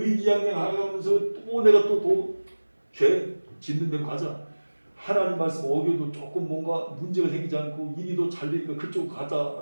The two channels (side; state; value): both; inverted; correlation -1.00